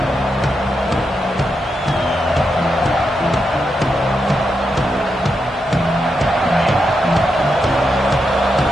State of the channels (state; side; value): normal; both; correlation 0.84